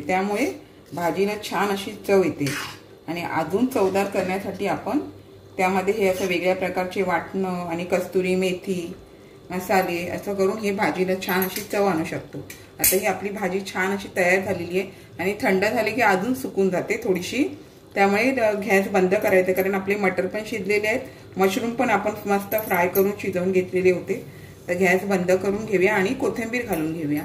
भाजीला छान अशी चव येते। आणि अजून चवदार करण्यासाठी आपण त्यामध्ये हे असं वेगळ्या प्रकारचे वाटणं आणि कस्तुरी मेथी मसाले असं करून हे भाजीला छान अशी चव आणू शकतो। आता ही आपली भाजी छान अशी तयार झालेली आहे। आणि थंड झाली की अजून सुकून जाते थोडीशी, त्यामुळे गॅस बंद करायचं, कारण आपले मटर पण शिजलेले आहेत, मशरूम पण आपण मस्त फ्राय करून शिजवून घेतलेले होते। तर गॅस बंद करून घेऊया आणि कोथिंबीर घालून घेऊया।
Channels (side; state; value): both; identical; correlation 1.00